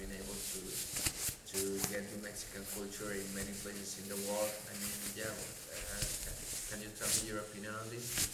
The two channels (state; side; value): identical; both; correlation 1.00